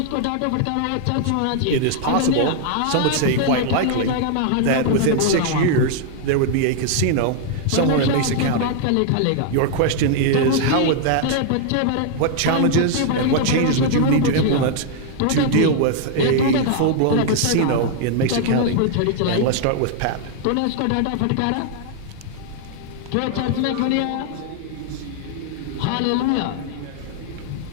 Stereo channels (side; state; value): both; different; correlation 0.00